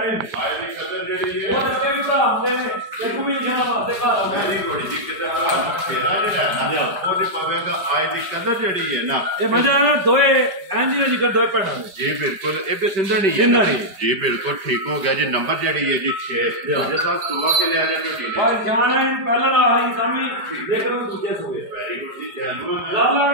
ਆਏ ਦੀ ਕਦਰ ਜਿਹੜੀ ਹੈ ਉਹ ਅੱਗੇ ਵੀ ਭਰਾ ਹੁੰਦੇ ਨੇ ਇੱਕ ਵੀ ਨਿਸ਼ਾਨ ਵਾਸਤੇ ਘਰ ਆਉਂਦੇ ਨਹੀਂ ਥੋੜੀ ਜੀ ਕਿਤੇ ਭਰਾ ਦਾ ਫੇਰਾ ਜਿਹੜਾ ਹੈ ਨਾ ਉਹਦੀ ਪਵੇਗਾ ਆਏ ਦੀ ਕਦਰ ਜਿਹੜੀ ਹੈ ਨਾ ਇਹ ਮਜ਼ਾ ਨਾ ਦੋਏ ਐਂਦੀ ਜਿਕਰ ਦੋਏ ਪੈਣਾ ਜੀ ਬਿਲਕੁਲ ਇਹ ਵੀ ਸਿੰਧਾ ਨਹੀਂ ਜੀ ਬਿਲਕੁਲ ਠੀਕ ਹੋ ਗਿਆ ਜੀ ਨੰਬਰ ਜਿਹੜੀ ਹੈ ਜੀ 6 ਜੇ ਸਾਹਿਬ ਸੁਆ ਕੇ ਲਿਆ ਜਾ ਕੇ ਭਾਈ ਜਾਨ ਪਹਿਲਾਂ ਨਾ ਆਈ ਸਾਮੀ ਦੇਖ ਲਓ ਦੂਜੇ ਸੋਏ ਵੈਰੀ ਗੁੱਡ ਜੀ ਜੈਨੂਅਨ ਲਾਲਾ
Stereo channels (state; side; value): late; left; 4.9 ms